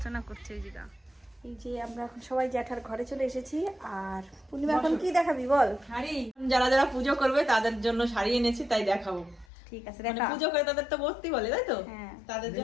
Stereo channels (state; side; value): drops out; right; at 9.5 s